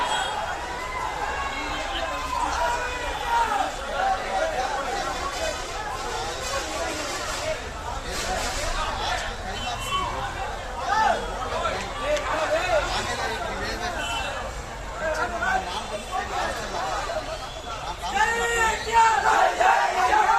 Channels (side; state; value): both; identical; correlation 1.00